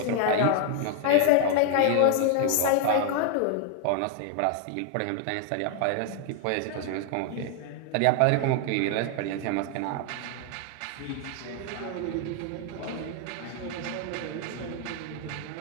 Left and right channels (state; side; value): different; both; correlation 0.00